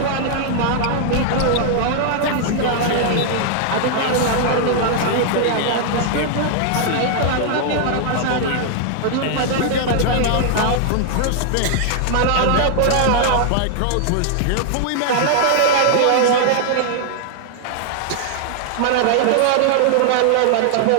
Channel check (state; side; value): different; both; correlation -0.01